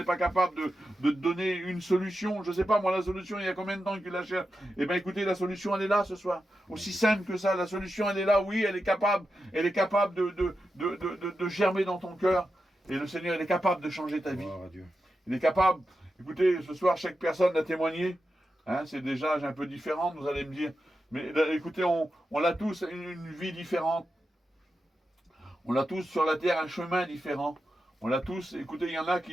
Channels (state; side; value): normal; both; correlation 0.89